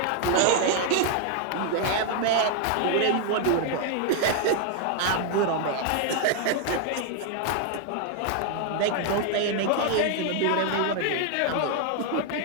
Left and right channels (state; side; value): different; both; correlation 0.00